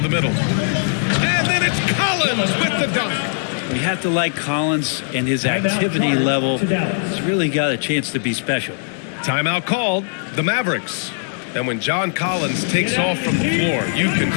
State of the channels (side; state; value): right; silent; digital silence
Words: the middle. And then it's Collins with the dunk. We have to like Collins and his activity level. He's really got a chance to be special. Timeout called, the Mavericks. And when John Collins takes off from the floor, you can